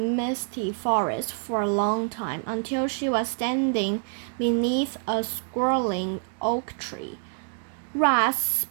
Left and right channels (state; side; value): silent; left; digital silence